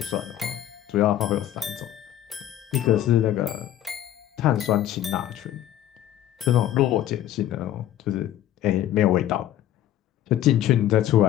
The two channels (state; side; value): quieter; right; 12.2 dB